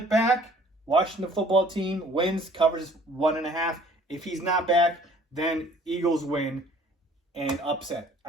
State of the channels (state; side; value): normal; both; correlation 0.54